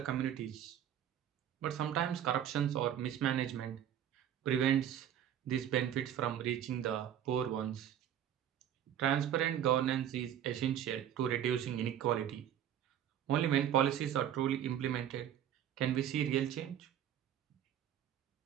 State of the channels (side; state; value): left; quieter; 10.2 dB